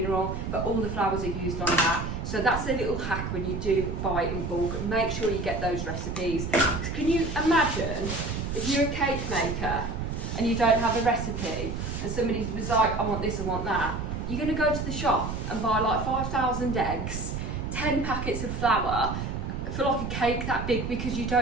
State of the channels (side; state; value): right; noise; rumble, 4 dB below the sound